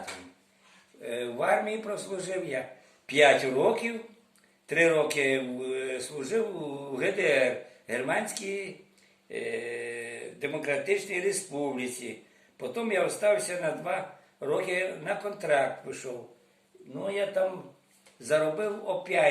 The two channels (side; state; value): both; identical; correlation 1.00